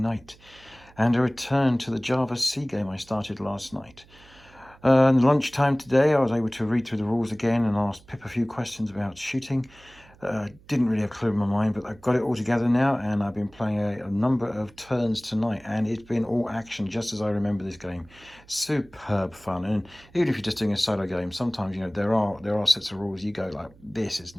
and a return to the Java C game I started last night. In lunchtime today, I was able to read through the rules again and ask Pip a few questions about shooting. Didn't really have a clue in my mind, but I've got it all together now, and I've been playing a number of turns tonight, and it's been all action, just as I remember this game. Superb fun, and even if you're just doing a solo game, sometimes there are sets of rules you go like, this has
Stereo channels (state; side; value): noise; right; hum, 26 dB below the sound